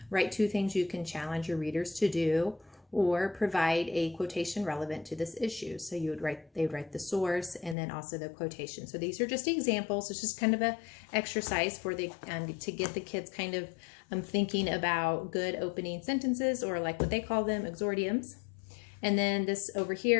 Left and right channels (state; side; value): drops out; right; at 7.8 s